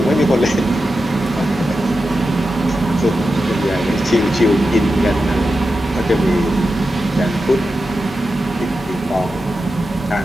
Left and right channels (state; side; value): normal; both; correlation 0.90